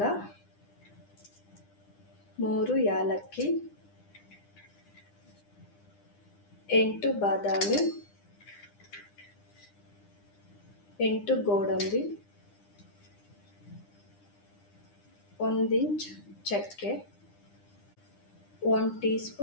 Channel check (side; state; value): right; late; 9.9 ms